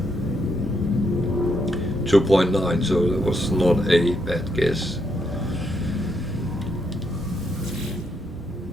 2.9, so that was not a bad guess.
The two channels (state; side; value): normal; both; correlation 0.78